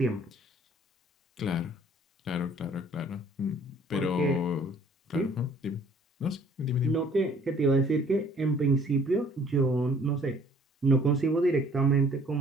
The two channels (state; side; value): normal; both; correlation 0.57